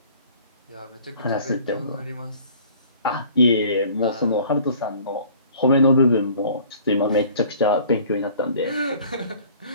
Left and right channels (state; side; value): inverted; both; correlation -0.51